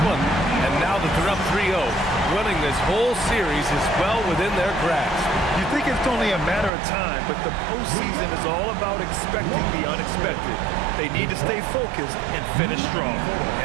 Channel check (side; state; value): left; drops out; at 6.7 s